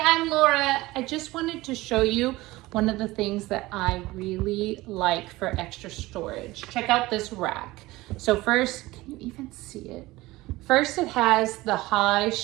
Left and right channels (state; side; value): quieter; left; 19.3 dB